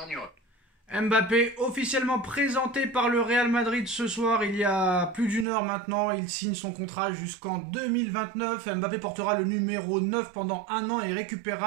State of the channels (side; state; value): left; drops out; at 5.5 s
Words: Mbappé officiellement présenté par le Real Madrid ce soir, il y a plus d'une heure maintenant. Il signe son contrat jusqu'en 2029. Mbappé portera le numéro 9 pendant un an et